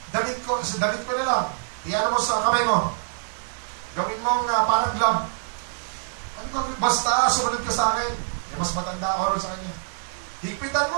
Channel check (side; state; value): left; silent; digital silence